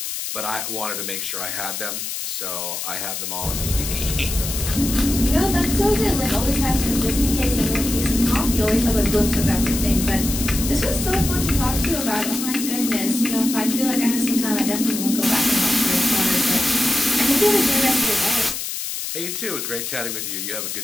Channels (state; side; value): noise; left; hiss, 5 dB below the sound